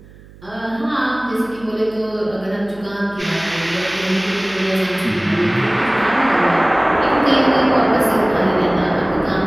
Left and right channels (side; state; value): right; noise; hum, 22 dB below the sound